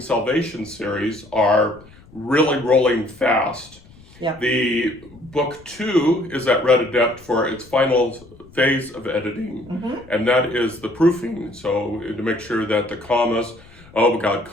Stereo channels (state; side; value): noise; left; rumble, 24 dB below the sound